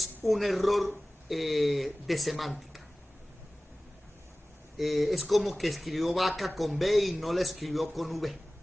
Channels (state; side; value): normal; both; correlation 0.98